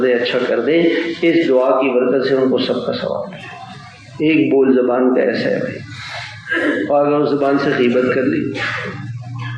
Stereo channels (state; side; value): identical; both; correlation 1.00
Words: دے، اچھا کر دے، اس دعا کی برکت سے ان کو سب کا ثواب ملے. ایک بول زبان کا ایسا ہے بھائی. اور اگر اس زبان سے غیبت کر لی.